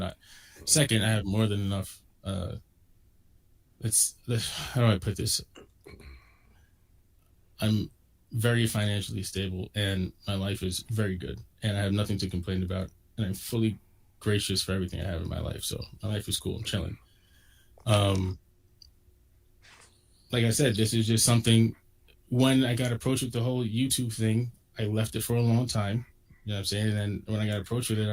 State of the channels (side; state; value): both; identical; correlation 1.00